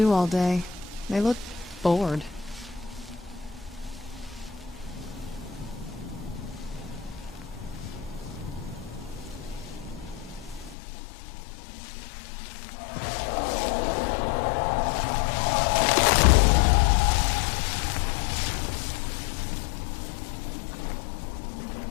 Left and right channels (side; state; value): right; drops out; at 10.8 s